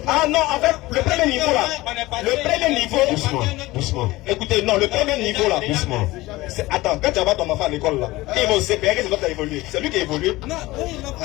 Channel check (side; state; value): right; quieter; 19.3 dB